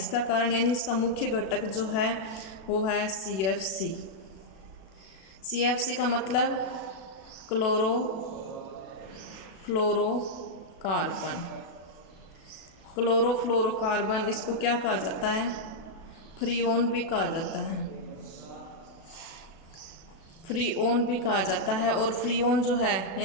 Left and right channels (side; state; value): right; late; 37 ms